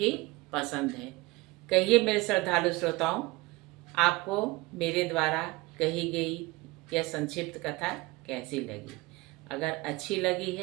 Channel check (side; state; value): left; quieter; 22.5 dB